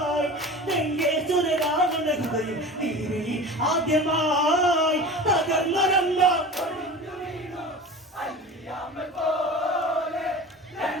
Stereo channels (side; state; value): both; normal; correlation 0.35